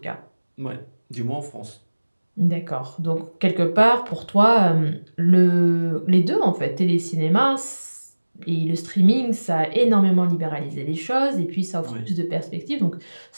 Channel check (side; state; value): both; inverted; correlation -1.00